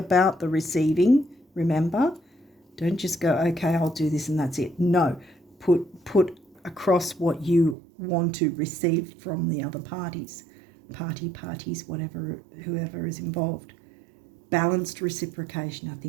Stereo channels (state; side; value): drops out; left; at 7.8 s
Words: the receiving. Remember, don't just go, okay, I'll do this and that's it. No, put across what you want to receive from the other parties, whatever, whoever is involved. Balanced reciprocation. I